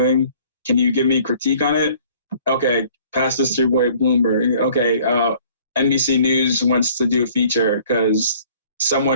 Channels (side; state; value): both; inverted; correlation -0.55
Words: Can you give me a critique on it? Okay, pass this to your boy Bloomberg. Okay, NBC News wants to do a feature because